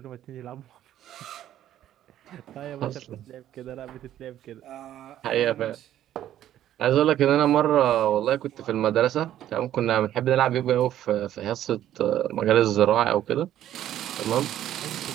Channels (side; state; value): left; quieter; 12.0 dB